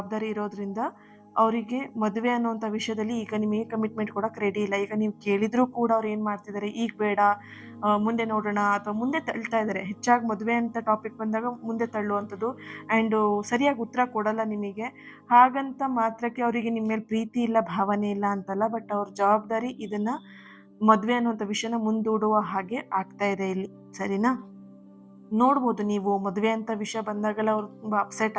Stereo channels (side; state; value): both; identical; correlation 1.00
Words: ಇರೋದ್ರಿಂದ ಅವರಿಗೆ ಮದುವೆ ಅನ್ನುವಂಥ ವಿಷಯದಲ್ಲಿ ಈಗ ನಿಮಗೆ ಕಮಿಟ್ಮೆಂಟ್ ಕೊಡೋಕೆ ರೆಡಿ ಇಲ್ಲ. ಈಗ ನೀವು ಕೇಳಿದರೂ ಕೂಡ ಅವ್ರು ಏನು ಮಾಡ್ತಿದ್ದಾರೆ, ಈಗ ಬೇಡ, ಮುಂದೆ ನೋಡೋಣ, ಅಥವಾ ಮುಂದೆ ತಳ್ತಾ ಇದ್ದಾರೆ. ಹೆಚ್ಚಾಗಿ ಮದುವೆ ಅಂತ ಟಾಪಿಕ್ ಬಂದಾಗ ಮುಂದೆ ತಳ್ಳುವಂಥದ್ದು. ಆ್ಯಂಡು ಸರಿಯಾಗಿ ಉತ್ತರ ಕೊಡಲ್ಲ ನಿಮಗೆ. ಹಾಗಂತ ಮಾತ್ರಕ್ಕೆ ಅವರಿಗೆ ನಿಮ್ಮ ಮೇಲೆ ಪ್ರೀತಿ ಇಲ್ಲ, ಭಾವನೆ ಇಲ್ಲ ಅಂತಲ್ಲ. ಬಟ್ ಅವ್ರ ಜವಾಬ್ದಾರಿ ಇದನ್ನು ಮದುವೆ ಅನ್ನುವಂಥ ವಿಷಯನ ಮುಂದೂಡುವ ಹಾಗೆ ಆಗ್ತಾ ಇದೆ ಇಲ್ಲಿ. ಸರಿನಾ? ನೋಡ್ಬೋದು ನೀವು ಮದುವೆ ಅಂತ ವಿಷಯ ಬಂದಾಗೆಲ್ಲ ಅವ್ರು ತುಂಬ